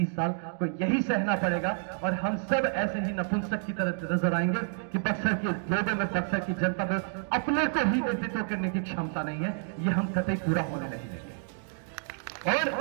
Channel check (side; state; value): left; silent; 58 dB below the other